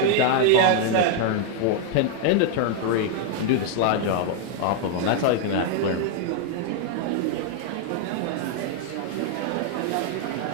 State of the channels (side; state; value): both; different; correlation 0.00